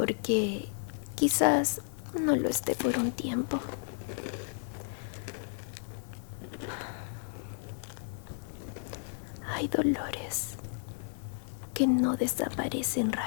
quizás no lo esté por un tiempo. Hay dolores que no desaparecen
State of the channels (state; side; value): silent; right; 56 dB below the other